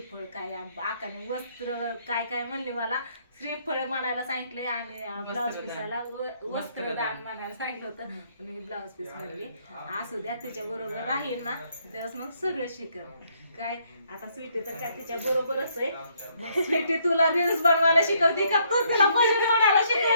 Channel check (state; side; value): inverted; both; correlation -0.70